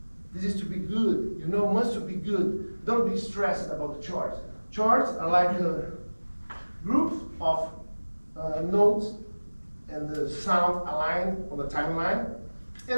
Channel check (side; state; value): both; inverted; correlation -1.00